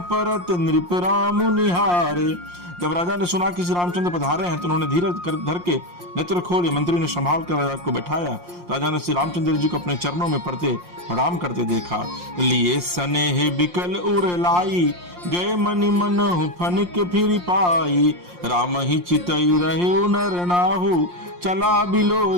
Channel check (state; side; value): late; left; 5.7 ms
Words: परत नृप राम निहारे। जब राजा ने सुना कि श्री रामचंद्र पधारे हैं तो उन्होंने धीरज धर के नेत्र खोले। मंत्री ने संभाल कर राजा को बैठाया। राजा ने श्री रामचंद्र जी को अपने चरणों में पड़ते प्रणाम करते देखा। लिए सनेह बिकल उर लाई, गए मनि मनहु फनिक फिर पाई। राम ही चितई रहे नर नाहु, चला